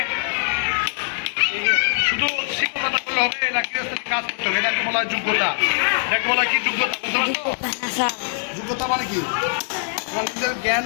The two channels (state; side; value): silent; right; digital silence